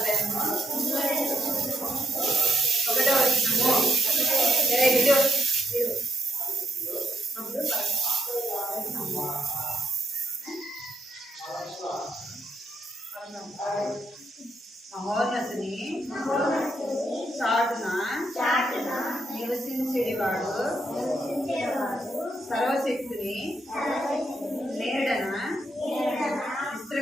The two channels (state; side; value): normal; both; correlation 0.78